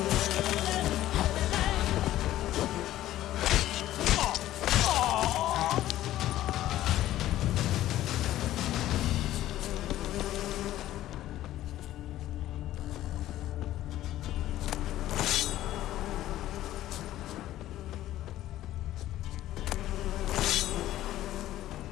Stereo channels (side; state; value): right; quieter; 14.0 dB